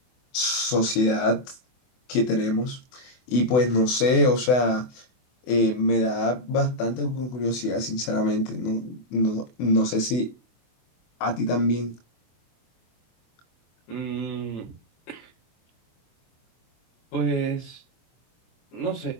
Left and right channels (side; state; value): right; late; 24 ms